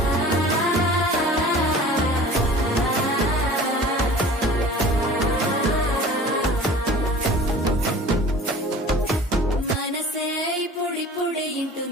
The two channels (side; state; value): both; normal; correlation 0.43